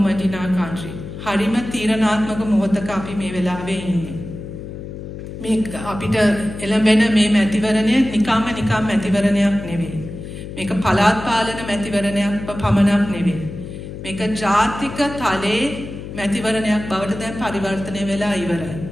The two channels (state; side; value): noise; left; hum, 10 dB below the sound